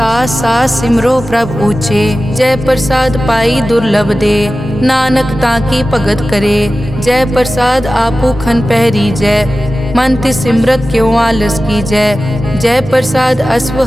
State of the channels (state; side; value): normal; both; correlation 0.95